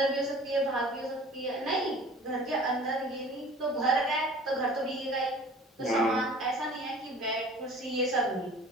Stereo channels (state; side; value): normal; both; correlation 0.45